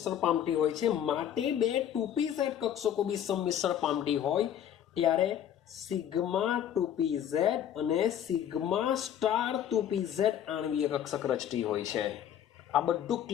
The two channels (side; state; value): right; quieter; 10.0 dB